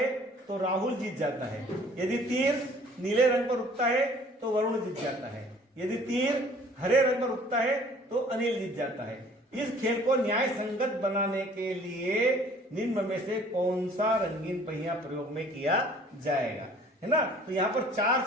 तो राहुल जीत जाता है। यदि तीर नीले रंग पर रुकता है तो वरुण जीत जाता है। यदि तीर हरे रंग पर रुकता है तो अनिल जीत जाता है। इस खेल को न्याय संगत बनाने के लिए निम्न में से कौन सा रंगीन पहिया प्रयोग में किया जाएगा, है ना। तो यहाँ पर 4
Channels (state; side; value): normal; both; correlation 0.53